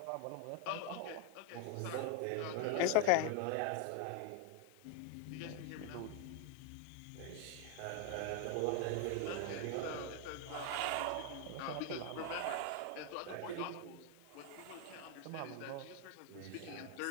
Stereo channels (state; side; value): different; both; correlation 0.00